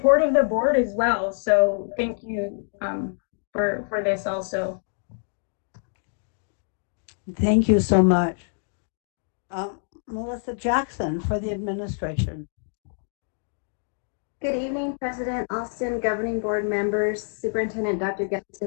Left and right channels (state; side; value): silent; right; digital silence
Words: of the board as well. So thank you for this also. Thank you so much. Melissa Jackson for the administration. Good evening, President Alston, governing board members, Superintendent Dr.